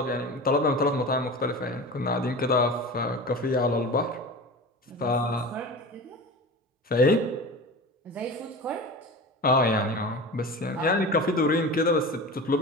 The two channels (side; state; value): both; normal; correlation 0.32